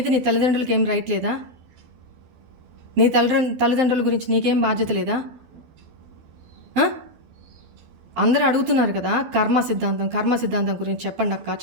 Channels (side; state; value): left; late; 12 ms